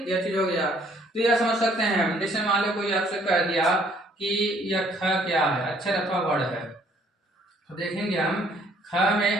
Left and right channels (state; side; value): normal; both; correlation 0.62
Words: यह चीज हो गया। तो यह समझ सकते हैं हम। जैसे मान लो कोई आपसे कह दिया कि यह ख क्या है, अक्षर अथवा वर्ण है, तो देखेंगे हम ख